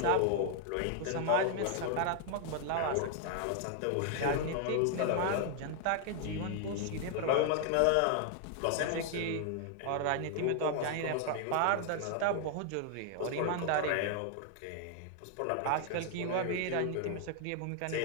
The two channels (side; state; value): both; different; correlation 0.00